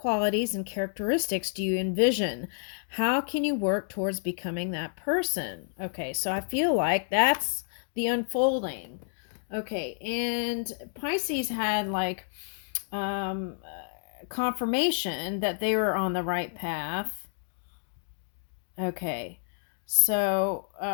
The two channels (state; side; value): silent; right; digital silence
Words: and characteristics do you envision? How can you work towards becoming that person? Okay, so I feel like that's the unfolding. Okay, and Pisces had like confirmation that they were on the right path. Okay, so